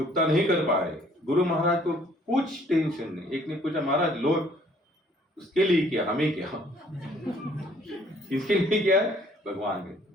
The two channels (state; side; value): normal; both; correlation 0.60